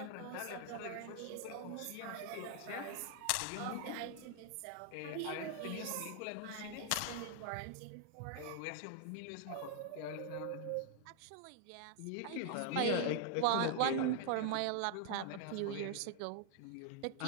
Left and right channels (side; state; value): both; different; correlation 0.00